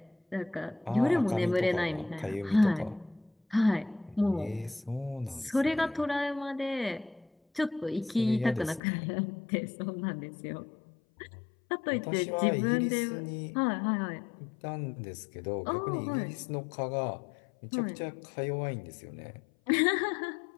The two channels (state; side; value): drops out; right; at 8.8 s